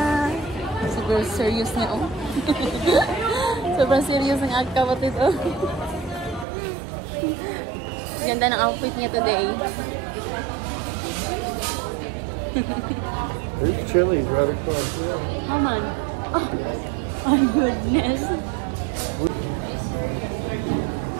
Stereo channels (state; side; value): drops out; left; at 6.5 s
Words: Super serious niya, oh. Sobrang serious ng aking kapatid, oh. Ganda ng outfit niya today. There's Chili's right across there. Come on. Oh, my goodness.